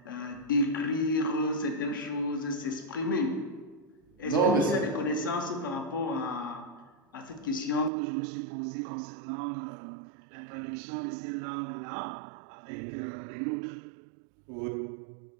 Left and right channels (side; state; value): left; drops out; at 7.9 s